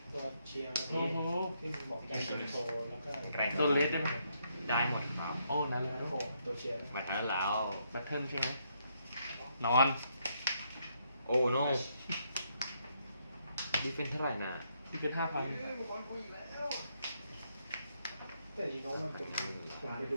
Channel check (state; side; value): inverted; both; correlation -0.75